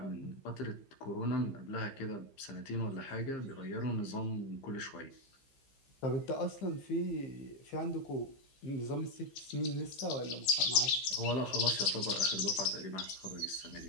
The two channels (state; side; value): late; right; 15 ms